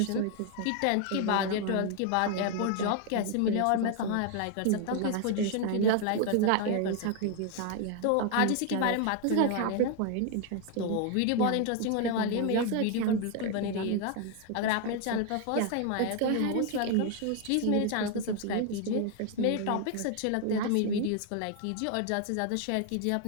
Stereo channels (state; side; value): different; both; correlation 0.00